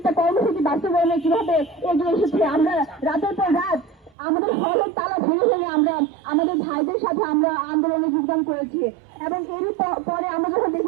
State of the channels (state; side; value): drops out; left; at 4.2 s